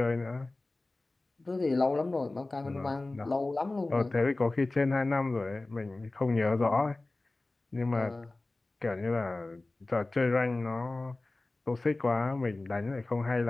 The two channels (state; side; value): quieter; right; 3.0 dB